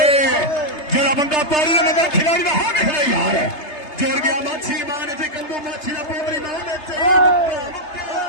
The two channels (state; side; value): late; right; 3.3 ms